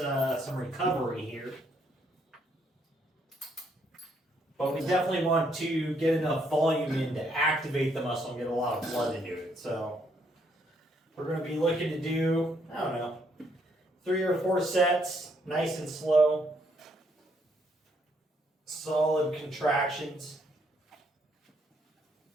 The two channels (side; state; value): both; normal; correlation 0.71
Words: recovery here. But we definitely want to get enough volume in to activate the muscle and get a lot of blood into it. So we're going to be looking to do, 3 or 4 sets, nice and slow. Solid contractions.